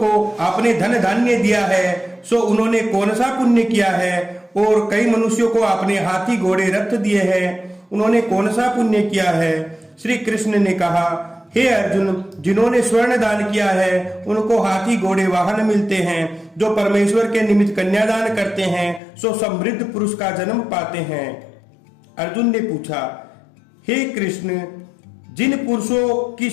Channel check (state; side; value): drops out; right; at 19.0 s